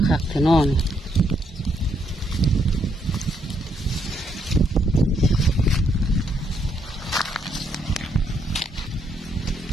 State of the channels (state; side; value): normal; both; correlation 0.74